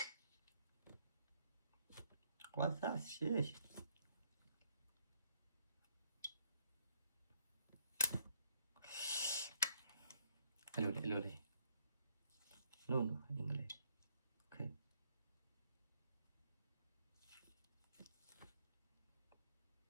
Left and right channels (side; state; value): both; inverted; correlation -0.72